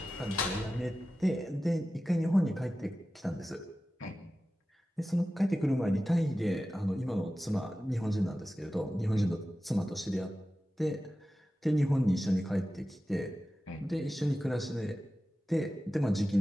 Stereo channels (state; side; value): normal; both; correlation 0.94